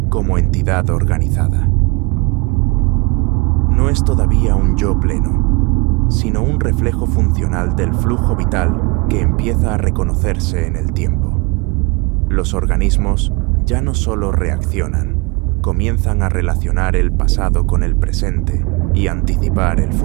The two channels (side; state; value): left; quieter; 27.3 dB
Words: como entidad organizada. No es todavía un yo pleno, sino un reflejo funcional del flujo vital que empieza a reconocerse en el tiempo. Los organismos ya no solo reaccionan, comienzan a relacionar el pasado con el presente y anticipar el